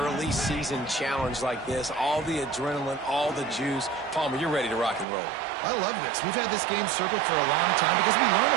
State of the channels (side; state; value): left; drops out; at 5.1 s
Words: season challenge like this, all the adrenaline, all the juice, Palmer, you're ready to rock and roll. I love this. We've had this game circled for a long time because we learn